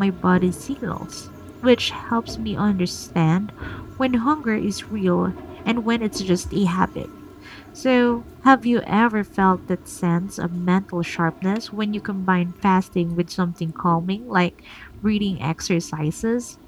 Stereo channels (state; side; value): identical; both; correlation 1.00